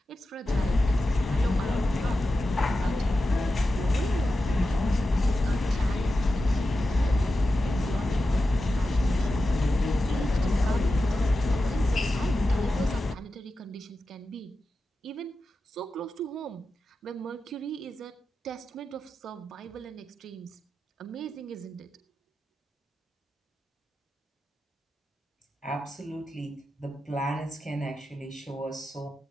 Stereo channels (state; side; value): normal; both; correlation 0.92